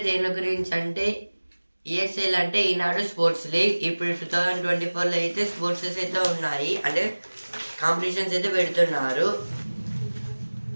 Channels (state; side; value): inverted; both; correlation -1.00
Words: దేని గురించి అంటే ESL అంటే ఈనాడు స్పోర్ట్స్ లీగ్. ఇప్పుడు 2024లో అయితే స్పోర్ట్సెస్ అయితే ఉన్నాయి, అంటే కాంపిటీషన్స్ అయితే పెడుతున్నారు.